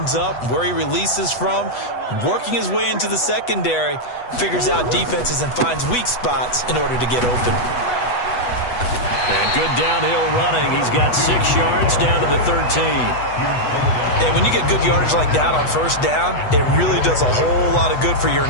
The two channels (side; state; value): right; late; 8.1 ms